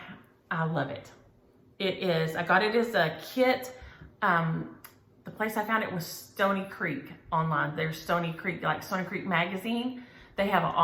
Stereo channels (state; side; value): identical; both; correlation 1.00